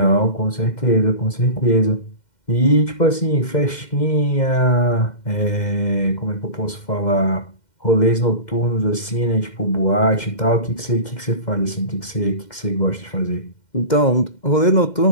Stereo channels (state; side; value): late; right; 2.1 ms